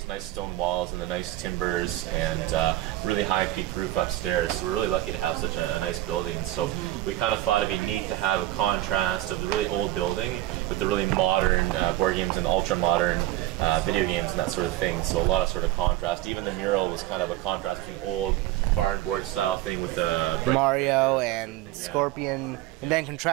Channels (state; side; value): quieter; left; 15.5 dB